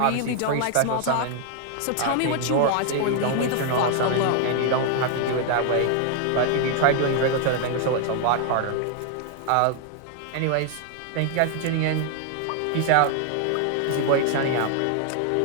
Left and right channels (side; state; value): both; different; correlation 0.00